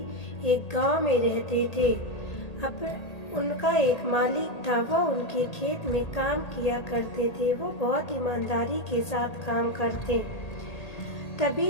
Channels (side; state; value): right; late; 1.8 ms